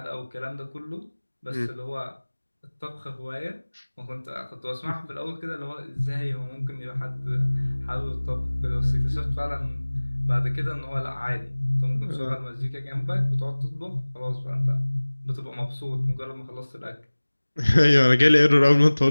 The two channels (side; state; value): both; inverted; correlation -1.00